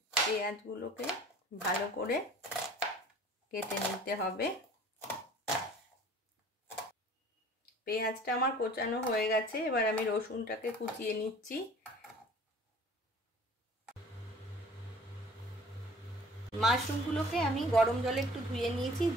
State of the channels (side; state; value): both; normal; correlation 0.48